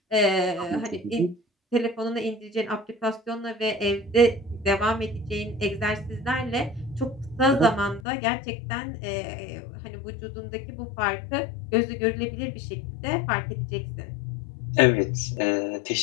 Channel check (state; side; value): drops out; right; at 8.0 s